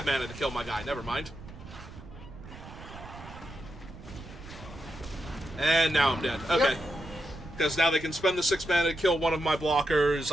mana to kill my guy. Never mind. And now I'm dead. Okay. Because now they can spend the 6 mana to kill one of my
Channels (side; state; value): right; noise; rumble, 15 dB below the sound